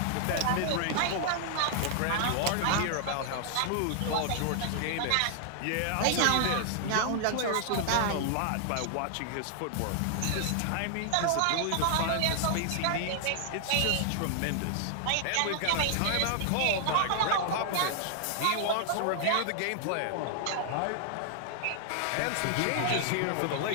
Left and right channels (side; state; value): both; different; correlation -0.01